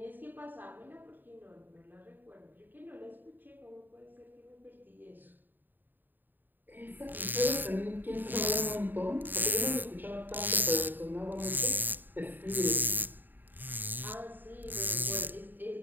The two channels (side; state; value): left; late; 0.091 ms